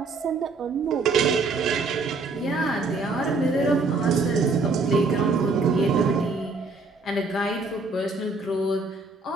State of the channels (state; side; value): quieter; left; 3.7 dB